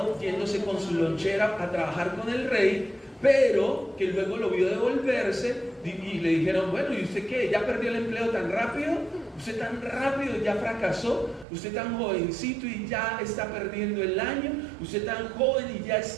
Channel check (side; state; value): left; drops out; at 11.5 s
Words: yéndose con su lonchera a trabajar con el rey, pero que luego lo vio devolverse y le dijeron, bueno, ¿y usted qué? ¿Ya perdió el empleo tan rápido? ¿Usted tan rápido ya fracasó? ¿Usted tan jovencito y ya está perdiendo el año? ¿Usted tan joven y ya